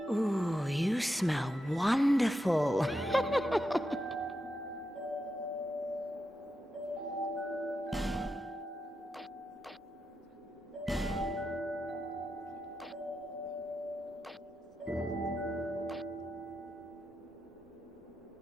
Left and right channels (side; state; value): both; normal; correlation 0.87